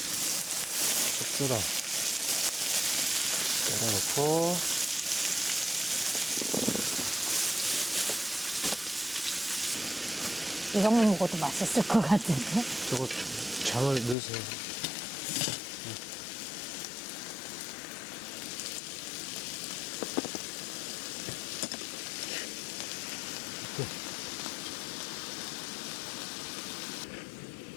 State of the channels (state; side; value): drops out; right; at 14.2 s